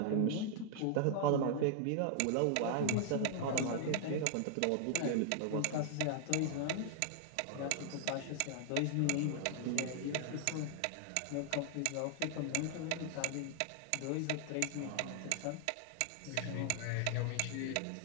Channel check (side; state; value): both; different; correlation 0.00